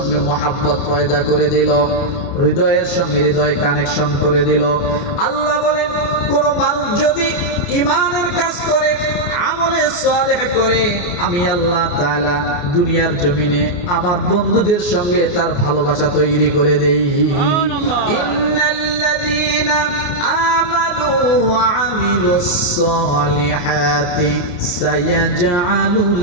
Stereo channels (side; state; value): right; late; 28 ms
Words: মহাব্বত পয়দা করে দিল, হৃদয়ের সঙ্গে হৃদয় কানেকশন করে দিল। আল্লাহ বলেন, কোন মানুষ যদি ঈমানের কাজ করে, আমলে সালেহ করে, আমি আল্লাহ তাআলা দুনিয়ার জমিনে আমার বন্ধুদের সঙ্গে তার ভালোবাসা তৈরি করে দেই। ইন্নাল্লাযীনা আমানু ওয়া আমিলুস সালিহাতি সায়াজআলু